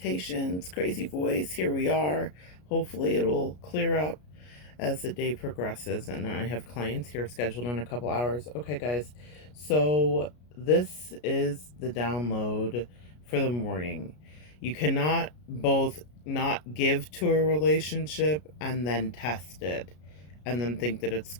crazy voice. Here we are. Hopefully, it will clear up as the day progresses. And I have clients here scheduled in a couple hours. Okay, guys. So, this is the download for the morning. You cannot both not give to a relationship and then test it and then think that it's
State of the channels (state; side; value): late; right; 33 ms